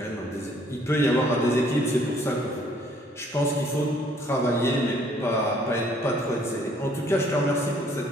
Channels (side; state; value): both; normal; correlation 0.62